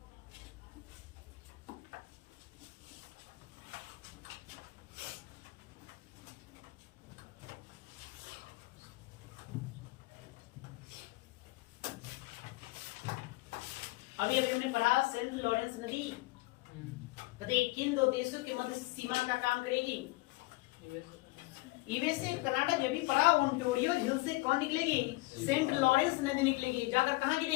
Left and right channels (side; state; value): right; quieter; 22.4 dB